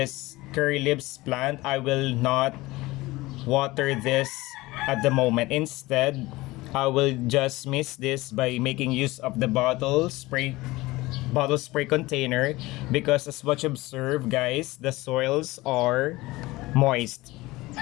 curry leaves plant, I will not water this at the moment. Instead, I will just mix this by making use of the bottle spray container, because as what you observe, guys, the soils are moist.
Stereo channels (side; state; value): right; quieter; 20.0 dB